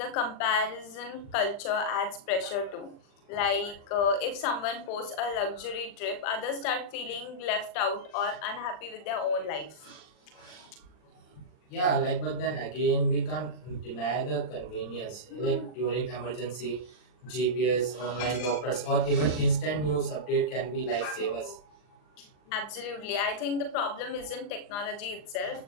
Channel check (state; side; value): late; right; 39 ms